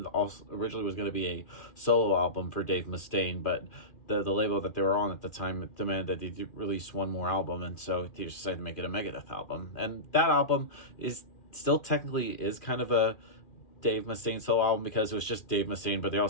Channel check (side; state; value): right; late; 2.4 ms